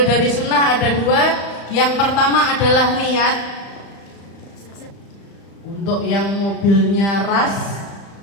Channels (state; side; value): late; right; 35 ms